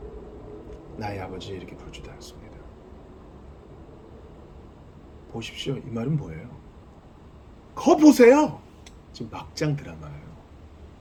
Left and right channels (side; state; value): both; identical; correlation 1.00